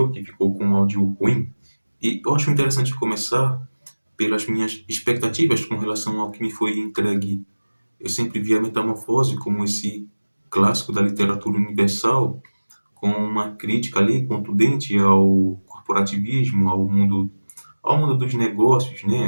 que ficou com um áudio ruim. E eu acho interessante começar pelas minhas expectativas com relação ao que me foi entregue. Eu sempre vi A Metamorfose como esse clássico da literatura universal, com uma crítica ali contundente ao corporativismo, ao mundo dos negócios,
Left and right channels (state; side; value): inverted; both; correlation -1.00